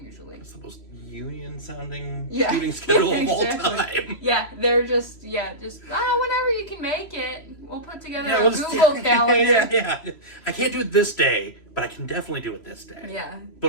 It's the most union-sounding Yeah. shooting schedule of all Exactly. time. Yeah, they're just whenever you can make it, we'll put together a we'll just- Google calendar. Yeah. I can't do it this day, but I can definitely do it this day. Yeah. But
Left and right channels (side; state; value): right; late; 3.0 ms